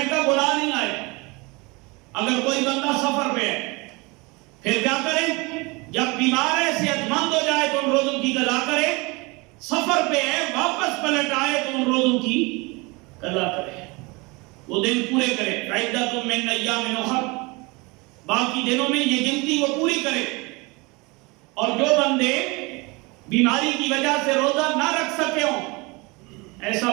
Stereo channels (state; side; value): quieter; left; 26.2 dB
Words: کا گناہ نہیں آئے۔ اگر کوئی بندہ سفر پہ ہے پھر کیا کرے؟ جب بیمار ہے، صحت مند ہو جائے تو ان روزوں کی قضا کرے، سفر پہ ہے واپس پلٹ آئے تو ان روزوں کی قضا کرے، وہ دن پورے کرے۔ عدۃ من ایام اخر، باقی دنوں میں یہ گنتی وہ پوری کرے۔ اور جو بندے بیماری کی وجہ سے روزہ نہ رکھ سکے ہوں، ایسا